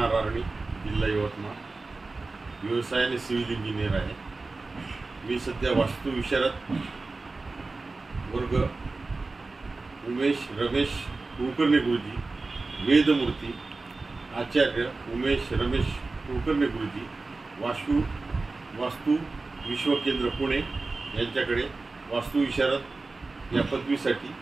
आर्णी, जिल्हा यवतमाळ. व्यवसायाने सिव्हिल इंजिनियर आहे. मी सध्या वास्तू विशारद वर्ग उमेश रमेश कुलकर्णी गुरुजी, वेदमूर्ती आचार्य उमेश रमेश कुलकर्णी गुरुजी, वास्तू विश्वकेंद्र पुणे यांच्याकडे वास्तू विशारद या पदवीसाठी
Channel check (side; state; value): left; quieter; 3.6 dB